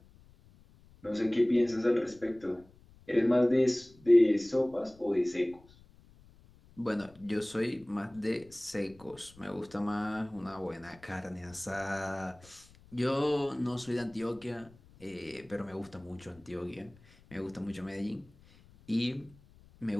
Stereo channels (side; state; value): left; noise; rumble, 25 dB below the sound